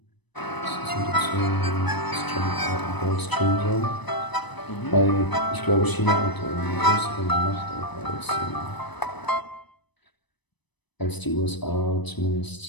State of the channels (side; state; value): right; late; 1.0 ms